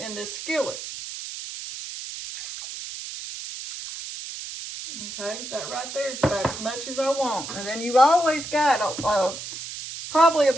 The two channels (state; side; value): noise; right; hiss, 9 dB below the sound